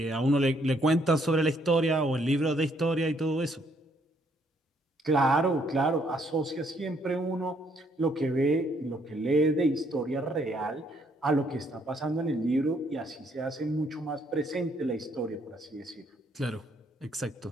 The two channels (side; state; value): both; normal; correlation 0.69